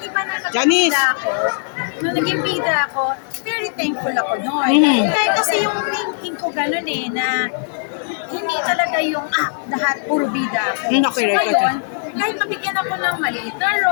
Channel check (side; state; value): right; silent; digital silence